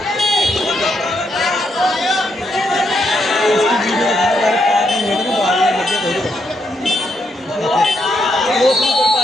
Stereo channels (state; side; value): normal; both; correlation 0.78